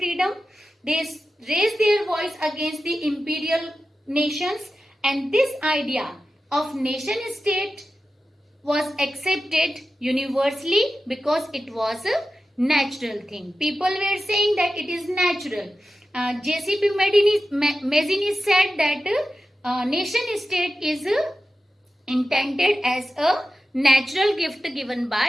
They raised their voice against the imperial nations, and this idea of nation state was accepted universally because it was a natural thing. People were saying that it is natural. J.C.P. Mazzini said that nation state is intended as a natural gift given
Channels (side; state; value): both; normal; correlation 0.93